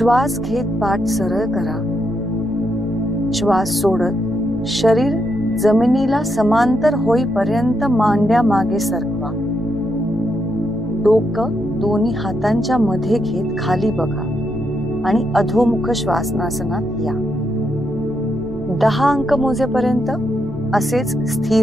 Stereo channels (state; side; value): noise; right; rumble, 21 dB below the sound